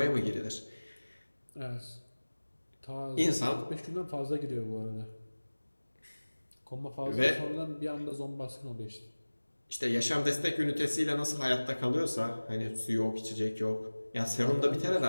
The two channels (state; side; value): inverted; both; correlation -1.00